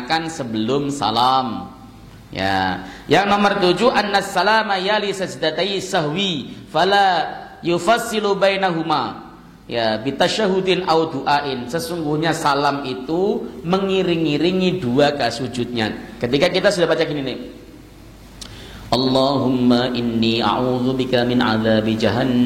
sebelum salam. Ya, yang nomor 7 annas salama yali sajdatai sahwi fala yufassilu bainahuma. Ya, bitasyahudin au du'ain. Sesungguhnya salam itu mengiring-iringi dua sujudnya. Ketika kita sudah baca gini nih. Allahumma inni a'udzubika min adzabi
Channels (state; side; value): identical; both; correlation 1.00